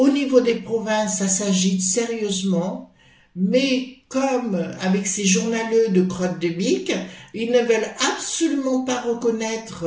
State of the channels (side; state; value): both; identical; correlation 1.00